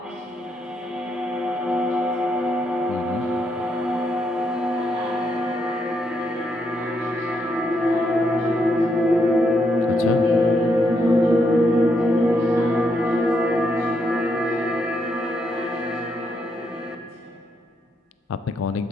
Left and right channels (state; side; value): normal; both; correlation 0.78